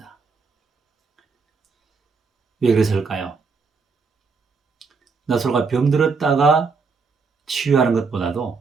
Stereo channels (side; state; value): left; quieter; 4.8 dB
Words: 왜 그랬을까요? 나사로가 병들었다가 치유하는